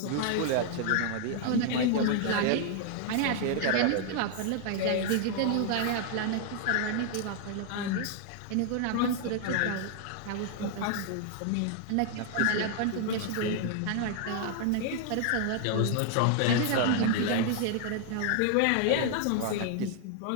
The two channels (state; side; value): different; both; correlation 0.00